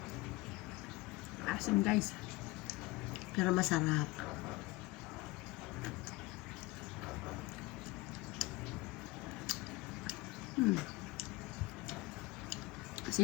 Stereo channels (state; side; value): quieter; right; 21.7 dB